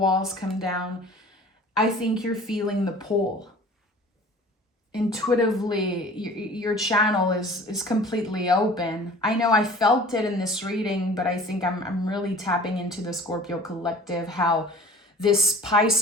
come down. I think you're feeling the pull. Intuitively, your channel is completely open. I know I felt it in this reading, but I think I'm really tapping into the Scorpio collective, how this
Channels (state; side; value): normal; both; correlation 0.45